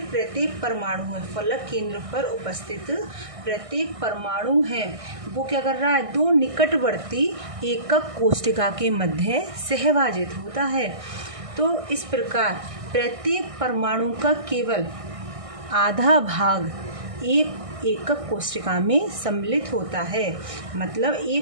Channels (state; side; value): late; left; 1.6 ms